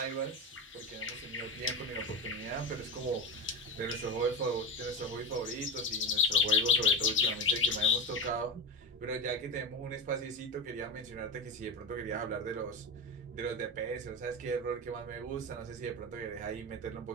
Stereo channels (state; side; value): normal; both; correlation 0.20